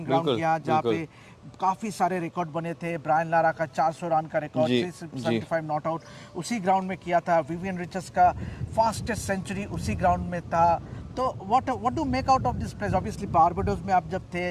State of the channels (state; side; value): identical; both; correlation 1.00